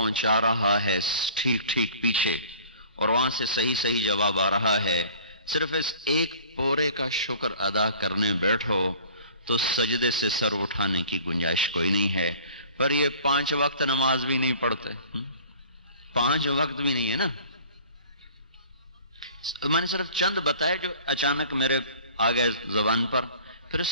رہا ہے ٹھیک ٹھیک پیچھے، اور وہاں سے صحیح صحیح جواب آ رہا ہے۔ صرف اس ایک پورے کا شکر ادا کرنے بیٹھو تو سجدے سے سر اٹھانے کی گنجائش کوئی نہیں ہے۔ پر یہ 5 وقت نماز بھی نہیں پڑھتے، 5 وقت بھی نہیں ہے نا۔ میں نے صرف چند بتائے جو اچانک میرے آ گئے زبان پر۔ پھر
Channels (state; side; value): inverted; both; correlation -0.47